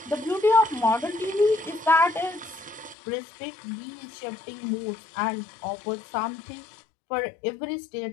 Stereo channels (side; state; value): right; drops out; at 3.0 s